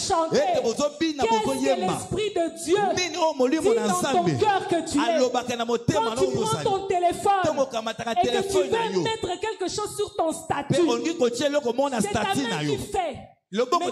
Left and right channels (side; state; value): both; identical; correlation 1.00